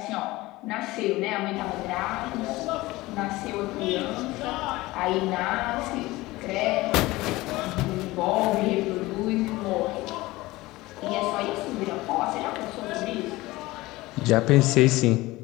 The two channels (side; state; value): right; quieter; 19.5 dB